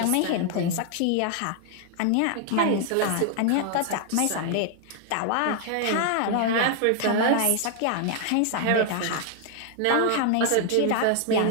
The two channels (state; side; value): different; both; correlation 0.00